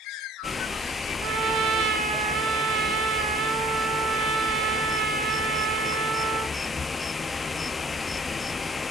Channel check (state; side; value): normal; both; correlation 0.53